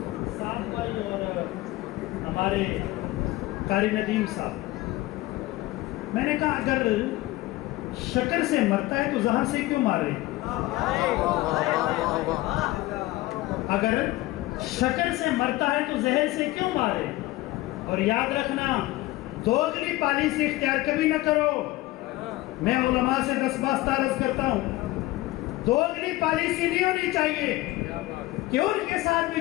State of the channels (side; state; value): right; quieter; 18.3 dB